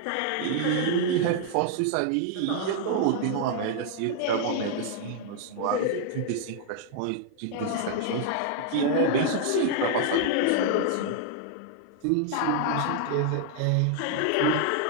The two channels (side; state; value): both; different; correlation 0.00